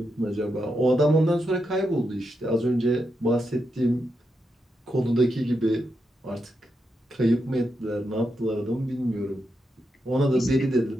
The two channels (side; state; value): both; normal; correlation 0.84